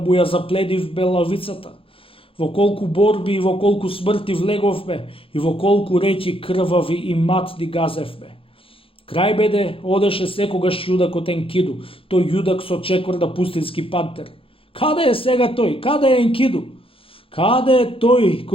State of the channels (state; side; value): late; right; 0.27 ms